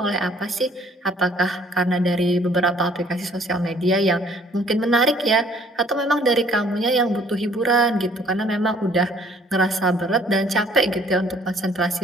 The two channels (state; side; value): normal; both; correlation 0.59